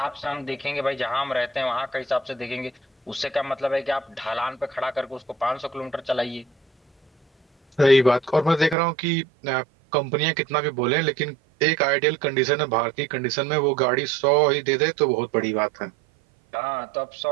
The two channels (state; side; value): drops out; left; at 8.8 s